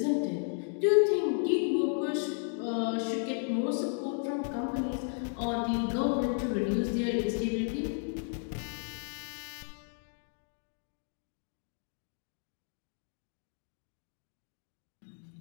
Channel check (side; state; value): right; silent; 55 dB below the other